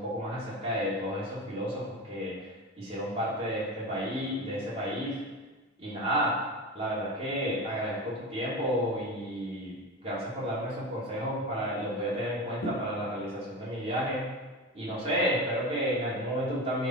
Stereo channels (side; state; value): both; normal; correlation 0.25